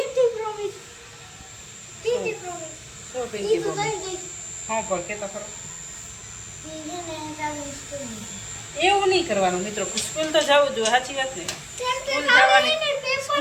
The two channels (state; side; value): identical; both; correlation 1.00